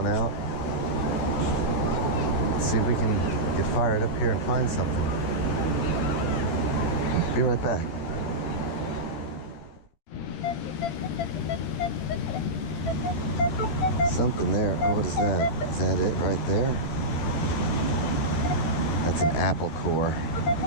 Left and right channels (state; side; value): late; right; 13 ms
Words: out. Let's see if we can get fired up here and find something. Be right back. Something there. Oh, what is that? Is that it right there? That's an apple core.